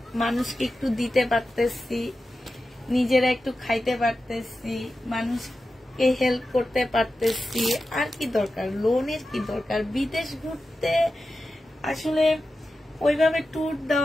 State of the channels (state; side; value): normal; both; correlation 0.92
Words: মানুষকে একটু দিতে পারতেছি, নিজেরা একটু খাইতে পারতেছি, মানুষকে হেল্প করতে পারতেছি। আর কি দরকার? লোনের কি দরকার? বিদেশ ঘুরতে আসলে ওইভাবে ট্যুর